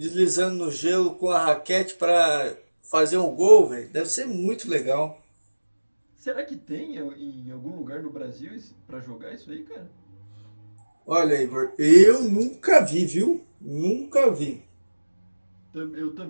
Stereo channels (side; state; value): both; inverted; correlation -1.00